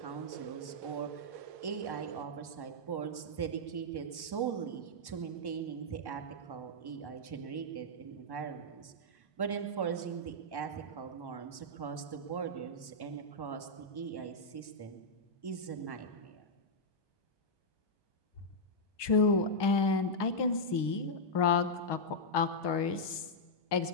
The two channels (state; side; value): late; right; 1.2 ms